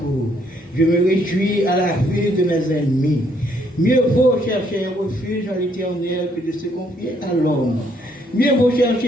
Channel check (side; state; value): both; normal; correlation 0.69